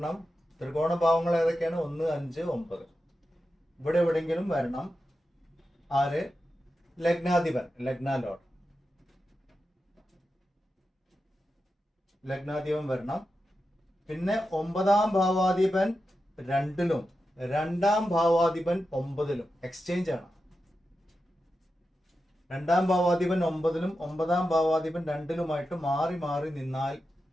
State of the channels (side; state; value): both; normal; correlation 0.90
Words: ത്രികോണ ഭാവങ്ങൾ ഏതൊക്കെയാണ്? 1, 5, 9. ഇവിടെ എവിടെയെങ്കിലും വരണം. ആര്? ലഗ്നാധിപൻ, ലഗ്നാലോഡ്, ലഗ്നാധിപൻ വരണം. പിന്നെ 9ാം ഭാവാധിപൻ 2ലും 2ാം ഭാവാധിപൻ 9ലും എക്സ്ചേഞ്ച് ആണ്. 2ാം ഭാവാധിപൻ 9ലും 9ാം ഭാവാധിപൻ 2ലുമായിട്ട് മാറി മാറി നിന്നാൽ